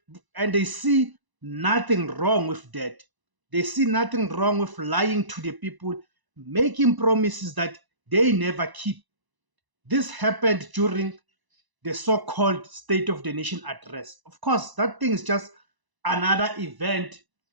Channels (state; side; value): late; left; 1.0 ms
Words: and they see nothing wrong with that. They see nothing wrong with lying to the people, making promises that they never keep. This happened during the so-called State of the Nation address. Of course, that thing is just another event